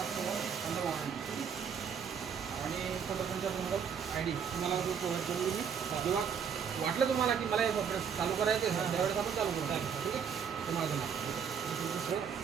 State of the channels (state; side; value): quieter; left; 7.2 dB